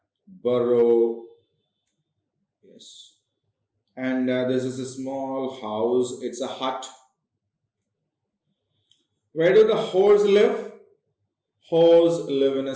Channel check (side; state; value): both; identical; correlation 1.00